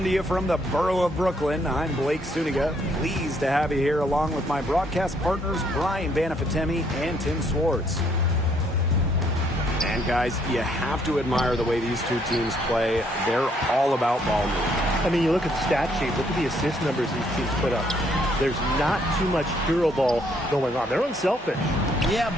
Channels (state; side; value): normal; both; correlation 0.68